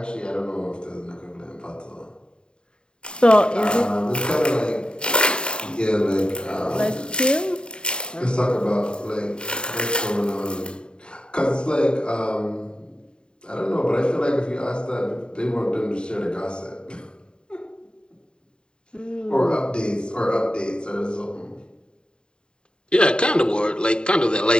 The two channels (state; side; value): late; right; 0.050 ms